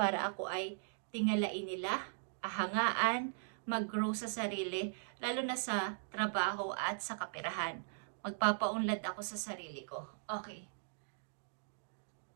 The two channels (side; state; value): left; silent; digital silence